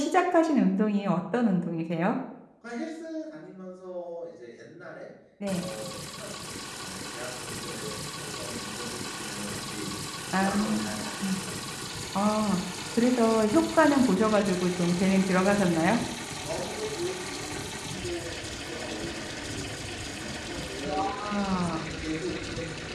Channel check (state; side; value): identical; both; correlation 1.00